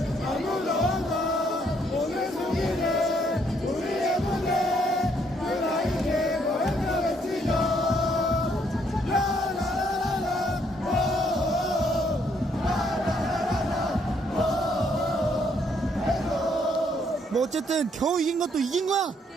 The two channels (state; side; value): normal; both; correlation 0.70